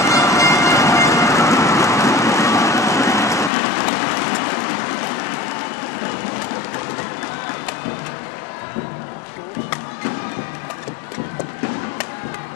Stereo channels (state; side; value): drops out; right; at 3.5 s